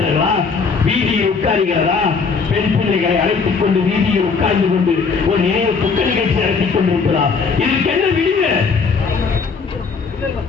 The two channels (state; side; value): quieter; right; 5.1 dB